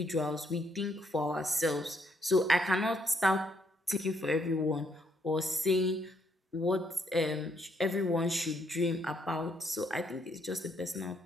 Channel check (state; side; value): normal; both; correlation 0.72